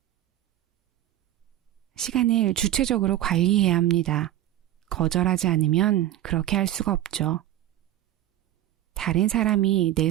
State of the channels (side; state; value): left; quieter; 13.3 dB